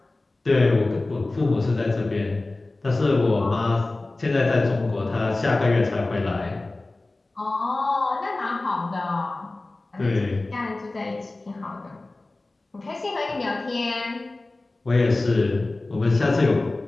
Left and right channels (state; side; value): quieter; right; 3.0 dB